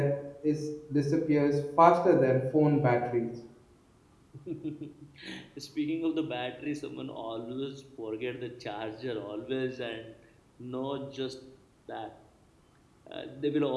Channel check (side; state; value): both; identical; correlation 1.00